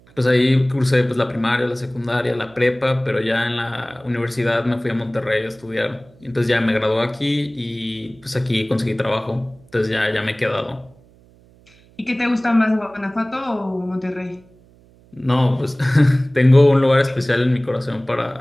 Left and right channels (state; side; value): noise; right; hum, 28 dB below the sound